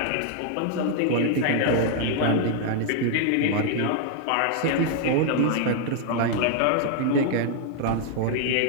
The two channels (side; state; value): both; different; correlation 0.00